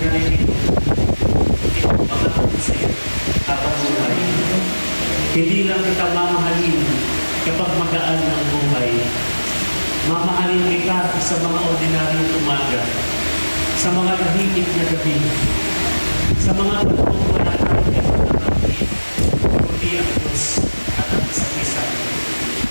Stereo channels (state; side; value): inverted; both; correlation -1.00